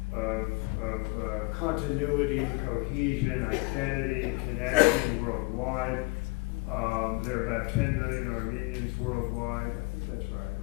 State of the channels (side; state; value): right; quieter; 26.1 dB